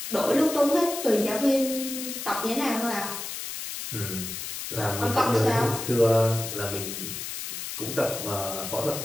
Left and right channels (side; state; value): left; noise; hiss, 7 dB below the sound